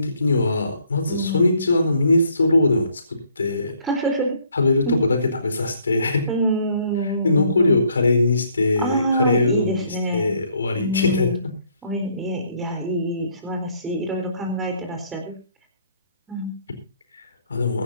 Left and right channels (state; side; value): inverted; both; correlation -0.65